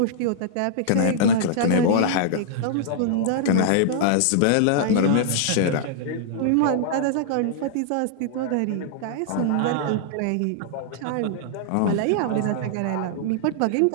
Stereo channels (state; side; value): different; both; correlation -0.01